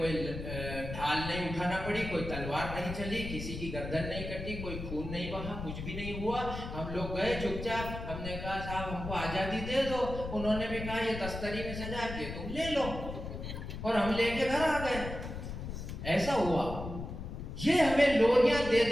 ढाल नहीं उठाना पड़ी, कोई तलवार नहीं चली, किसी की गर्दन नहीं कटी, कोई खून नहीं बहा, कुछ भी नहीं हुआ। हम लोग गए चुपचाप, हमने कहा साहब हमको आजादी दे दो, उन्होंने भी कहा ये तस्तरी में सजा के तुम ले लो, और हम लेके घर आ गए। ऐसा हुआ। ये हमें लोरियां दे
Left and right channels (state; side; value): noise; left; rumble, 7 dB below the sound